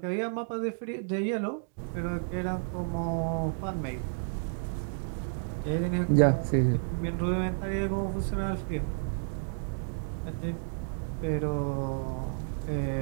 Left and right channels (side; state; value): left; silent; digital silence